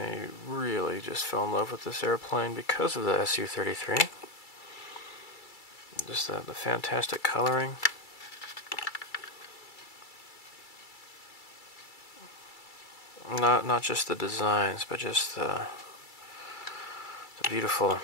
really just fell in love with this airplane because of the Su-33. Just the fantastic coloring. Not just the designs, but just the beautiful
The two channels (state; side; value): late; right; 2.3 ms